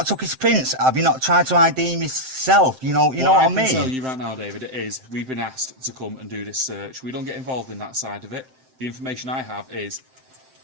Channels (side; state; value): left; late; 7.7 ms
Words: took his prints? Have you not tried to ID him yourself? You know what I mean? I can tell you right now, David, it is. We've been asked to come and do this search. We don't get involved in that side of it. The information I have is,